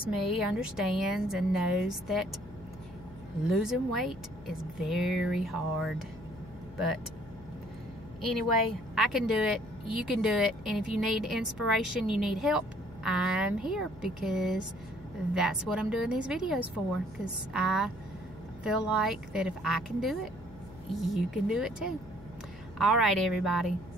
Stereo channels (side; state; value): left; noise; hum, 18 dB below the sound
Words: me understands and knows that losing weight is very hard. But anyway, I can do it, you can do it, and if you need inspiration, you need help, I'm here, because that's what I'm doing these videos for, because I feel like that if I can do it, you can do it too. All right, everybody,